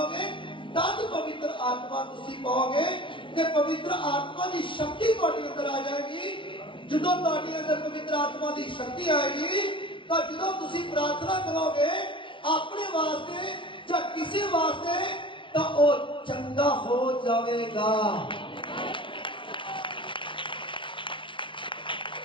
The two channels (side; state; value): right; late; 0.24 ms